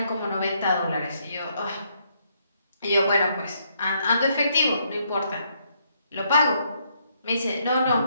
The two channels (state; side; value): inverted; both; correlation -0.73